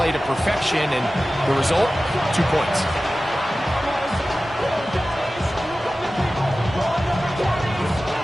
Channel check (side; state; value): both; normal; correlation 0.96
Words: to perfection, and the result, 2 points.